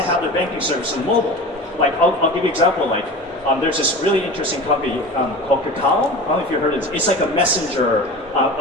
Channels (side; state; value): both; normal; correlation 0.33